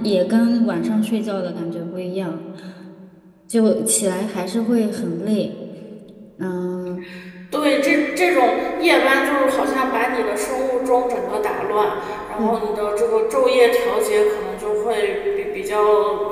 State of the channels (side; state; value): both; identical; correlation 1.00